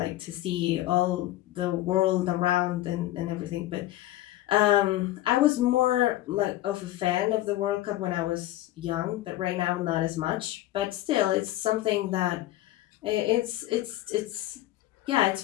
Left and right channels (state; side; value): quieter; right; 15.4 dB